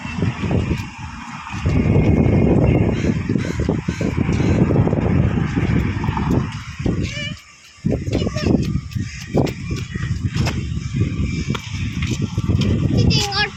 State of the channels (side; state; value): both; identical; correlation 1.00